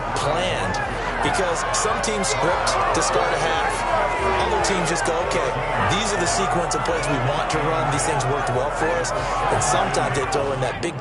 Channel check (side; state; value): both; identical; correlation 1.00